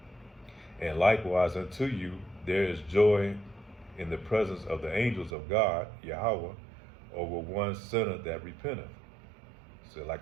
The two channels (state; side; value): drops out; left; at 5.4 s